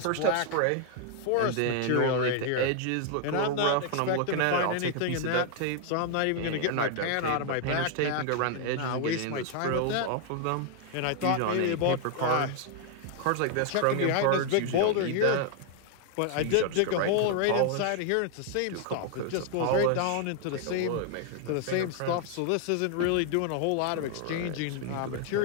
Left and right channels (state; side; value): different; both; correlation 0.00